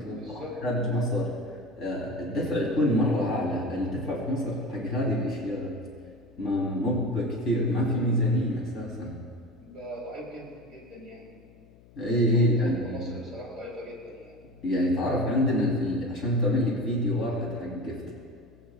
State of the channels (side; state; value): left; noise; hum, 25 dB below the sound